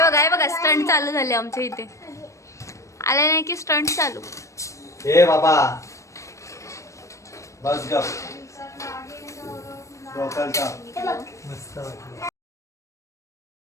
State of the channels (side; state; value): right; late; 0.15 ms